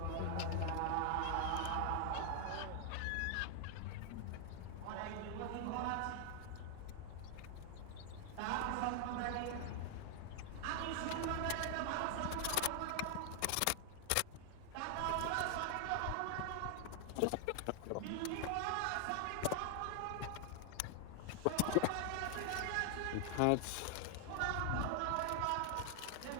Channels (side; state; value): both; different; correlation 0.00